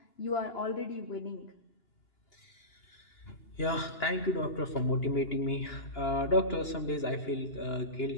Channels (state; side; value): late; right; 2.9 ms